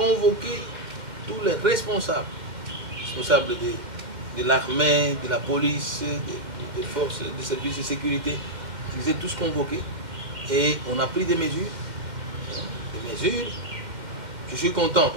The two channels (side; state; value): left; late; 2.1 ms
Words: tous les responsables de l'armée, de la police, des forces, des services de sécurité. Ils étaient tous convoqués et on a pris des mesures. Je suis content